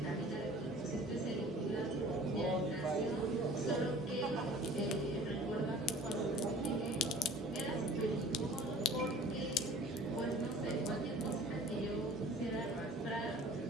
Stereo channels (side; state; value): both; normal; correlation 0.47